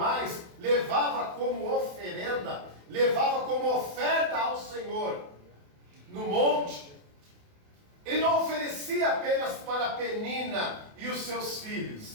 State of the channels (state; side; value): late; left; 28 ms